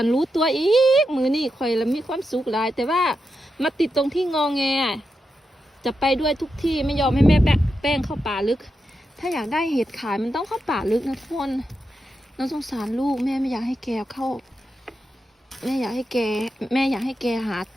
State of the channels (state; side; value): normal; both; correlation 0.87